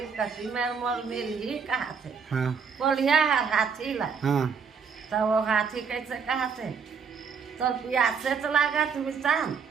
कटी में मोल मिर्गी कहा थे हाँ कोलिया हाथी ला। हाँ तब वो हाथी कैसे कहा थे तो प्यास से तो लगा थे मितान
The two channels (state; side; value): quieter; left; 6.1 dB